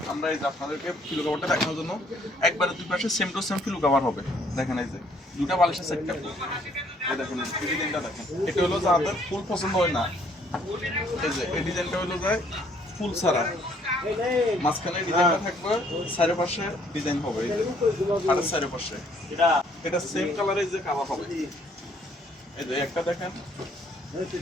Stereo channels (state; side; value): normal; both; correlation 0.64